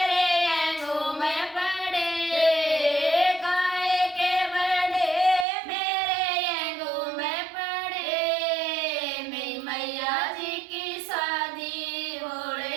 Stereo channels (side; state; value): left; drops out; at 5.5 s